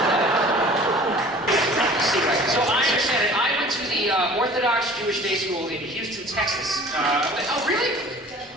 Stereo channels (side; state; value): both; normal; correlation 0.46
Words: that. So I understand it. I went to the Orthodox Jewish Day School in Houston, Texas. Oh, really?